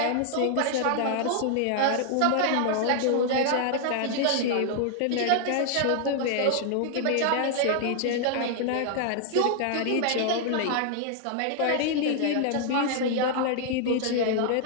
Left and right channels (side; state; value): both; different; correlation 0.00